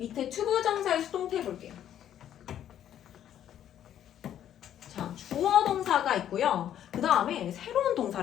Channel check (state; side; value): quieter; right; 10.6 dB